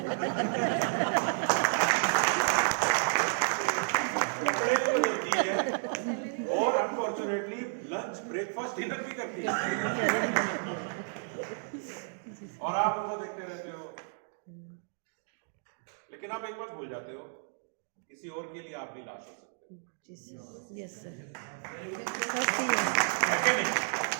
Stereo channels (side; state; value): left; silent; digital silence